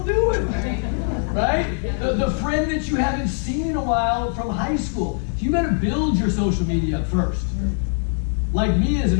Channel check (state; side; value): silent; right; 59 dB below the other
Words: doing? Right? The friend that you haven't seen in a while from high school. You better build your social media up first. Like me as